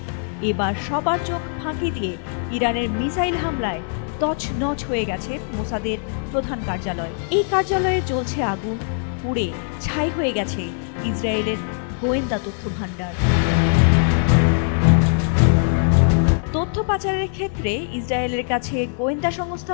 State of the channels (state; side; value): silent; right; 60 dB below the other